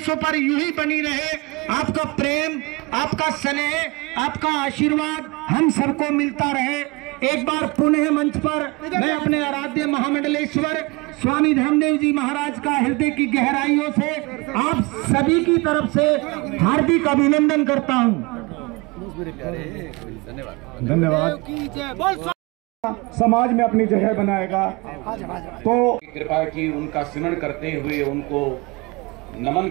पर यूं ही बनी रहे। आपका प्रेम, आपका स्नेह, आपका आशीर्वाद हम सबको मिलता रहे। एक बार पुनः मंच पर मैं अपने आराध्य महामंडलेश्वर स्वामी धर्मदेव जी महाराज का हृदय की गहराइयों से आप सभी की तरफ से हार्दिक अभिनंदन करता हूं। धन्यवाद। समाज में अपनी जगह बनाएगा तो कृपा की उनका स्मरण करते हुए, उनको नमन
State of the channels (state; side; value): quieter; left; 26.0 dB